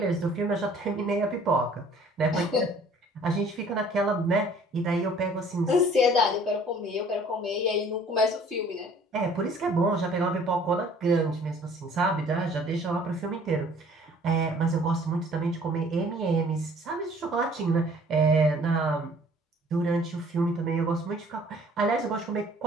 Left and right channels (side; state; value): both; normal; correlation 0.54